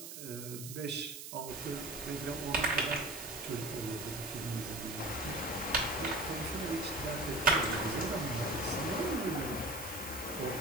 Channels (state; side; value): noise; right; hiss, 9 dB below the sound